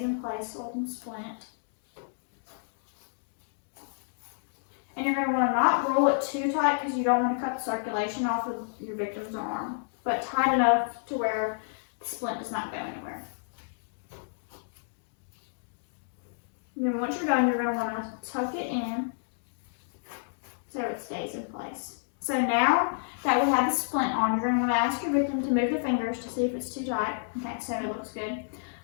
in place so it can splint. And you're going to want to not roll it too tight because you don't want to cut the circulation off of your victim's arm, but tight enough to where the splint does not go anywhere. And then once you're done, you're going to want to tuck it in so it stays in place. So now that we have the splint on, you're going to want to ask your victim to move the fingers to see if it's too tight. Okay, so it looks good.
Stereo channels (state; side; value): silent; right; digital silence